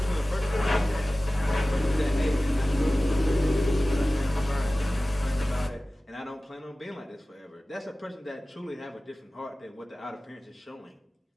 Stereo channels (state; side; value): normal; both; correlation 0.97